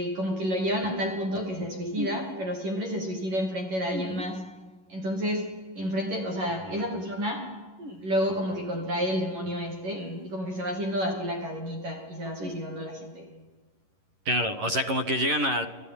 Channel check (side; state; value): left; late; 11 ms